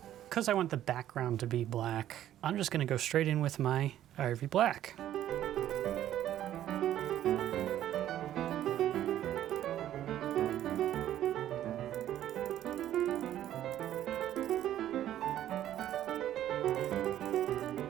Because I want the background to be black, I'm just going to go straight in with my ivory black.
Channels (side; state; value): left; quieter; 12.0 dB